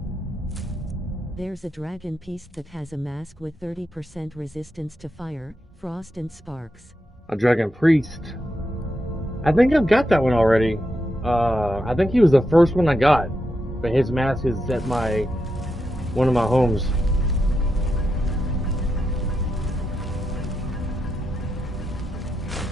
There's a dragon piece that has a mask with 30% resistance to fire, frost and sparks. A dragon priest. I think I've got that one already. I think he was the first one I got, but his mask is at one of my homes.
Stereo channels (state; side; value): normal; both; correlation 0.85